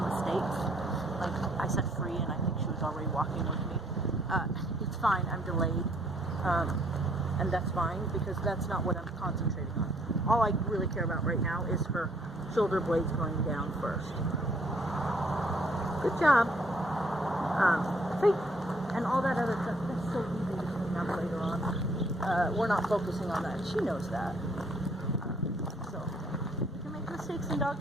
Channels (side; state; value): both; normal; correlation 0.65